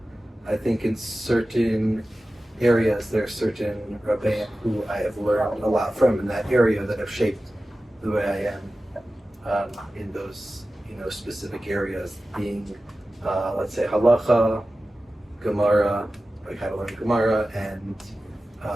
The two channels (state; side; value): normal; both; correlation 0.95